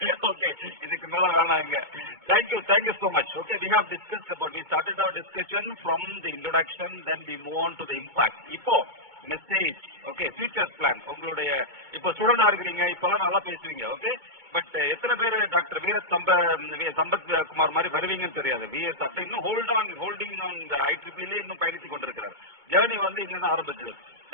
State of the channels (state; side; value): late; left; 2.2 ms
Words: Okay, இதுக்கு மேல வேணாங்க. Thank you so much. Okay, we started our discussion from the introduction, then we move on to the impact. இப்போ மெசேஜ், ஓகே, ஃபியூச்சர் பிளான். உங்களுடைய இப்போ ஸ்டூடெண்டா இருக்கிறீங்க, இப்பெல்லாம் நல்லா பேசுவீங்க, ஓகே, பட் எத்தனை பேர் டாக்டர் சம்பத் குமார் மாதிரி வருவீங்கன்னு தெரியாது. இன்னும் ஹோல்டிங் ஆன் IEEE இன்னும் பயணித்துக் கொண்டிருக்கிறார். ஜேர்னி வந்து இங்க தான் ஆரம்பிச்சது.